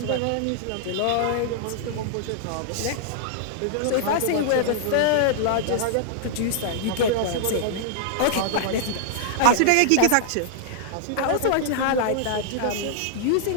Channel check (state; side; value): different; both; correlation -0.01